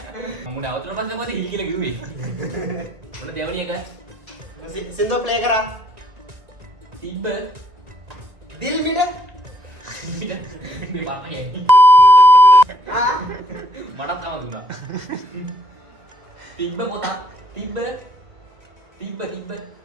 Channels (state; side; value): late; left; 1.9 ms